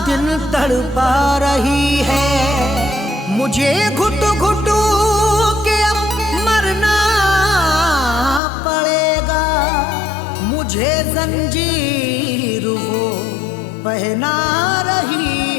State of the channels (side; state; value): right; drops out; at 8.4 s